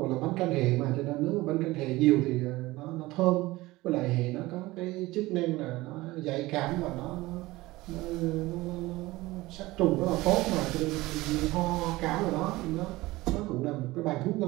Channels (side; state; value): left; quieter; 19.5 dB